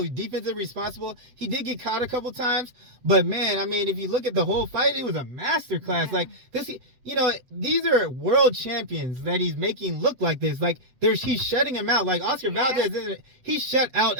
responsible. He did get caught a couple times, but man, I mean, if you look at the whole fight, it was a masterclass. Yeah. Like this, these are world champions that he's making look like this. Like he's shutting him out. Like Oscar Valdez, he shut out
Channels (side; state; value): left; late; 7.9 ms